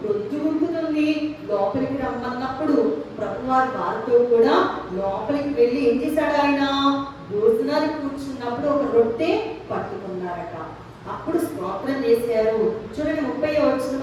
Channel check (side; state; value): both; identical; correlation 1.00